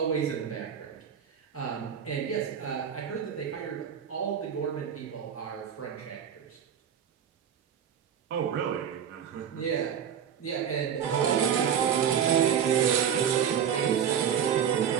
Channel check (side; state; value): left; quieter; 8.4 dB